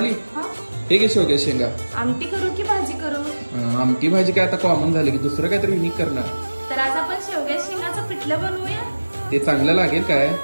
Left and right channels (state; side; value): inverted; both; correlation -1.00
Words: हा? हे घे शेवग्या शेंगा. आमटी करू की भाजी करू? आमटी भाजी काय आता कॉमन झाली की दुसरं काहीतरी युनिक करणार. तर आज आपण शेवग्या शेंगाचं पिठलं बनवूया. ते चांगलं लागेल काय?